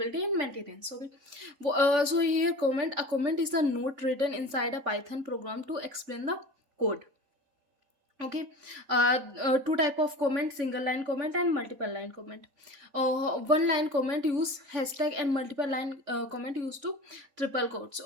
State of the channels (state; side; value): late; left; 3.5 ms